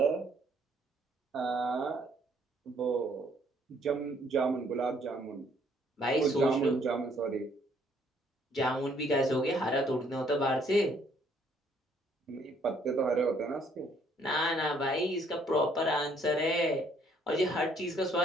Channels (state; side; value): normal; both; correlation 0.65